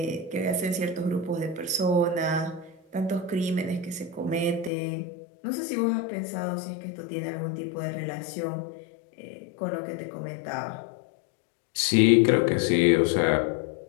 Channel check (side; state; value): right; drops out; at 4.7 s